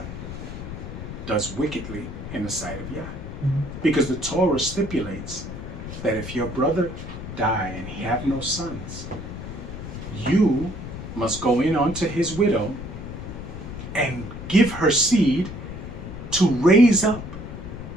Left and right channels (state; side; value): noise; left; rumble, 9 dB below the sound